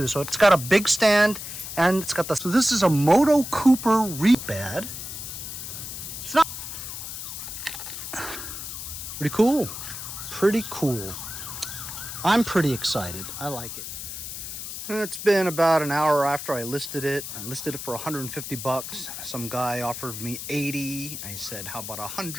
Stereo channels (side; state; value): left; noise; hiss, 8 dB below the sound